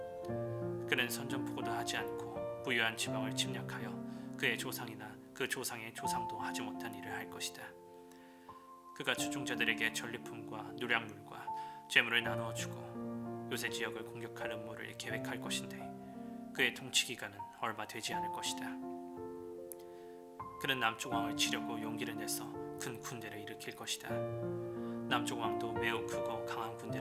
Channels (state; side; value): identical; both; correlation 1.00